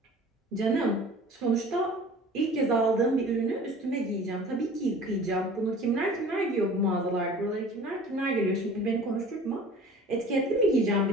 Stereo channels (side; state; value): both; normal; correlation 0.45